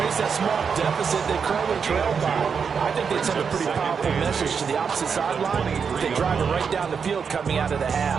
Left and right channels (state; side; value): quieter; left; 6.2 dB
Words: that small deficit they currently trailed by. I think they'd send a pretty powerful message to the opposite sideline if they drive it right down the field coming out of the